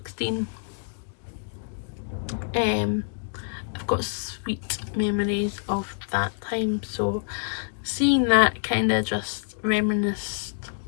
I've got sweet memories of that time, so seeing that kind of just reminisced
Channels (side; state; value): right; silent; digital silence